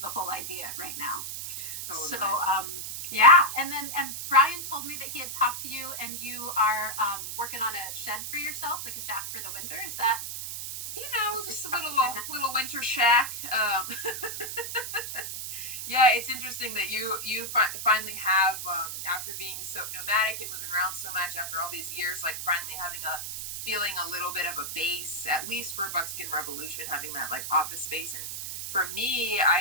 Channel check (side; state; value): right; noise; hiss, 6 dB below the sound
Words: whole idea right now. Totally. So, and Brian told me that he had talked to you and you are working on a shed for yourself, like a shack for the winter. Is that? Just a little winter shack. Yeah, it's interesting that you finally have, after being so nomadic and moving around so much after all these years, like finally feeling a little bit of a base, at least for Buckskin Revolution, having that like office space. And for me,